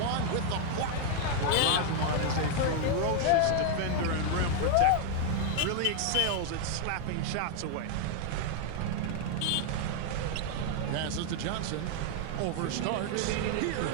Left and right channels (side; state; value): both; different; correlation 0.00